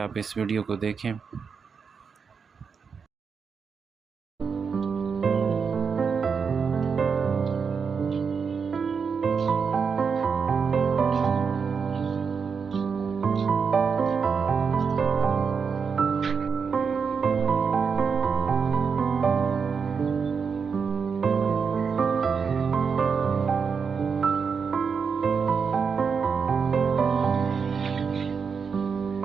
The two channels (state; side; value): quieter; left; 5.9 dB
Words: इस वीडियो को देखें।